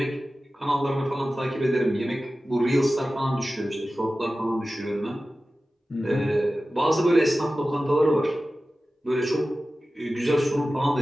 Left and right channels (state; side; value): normal; both; correlation 0.95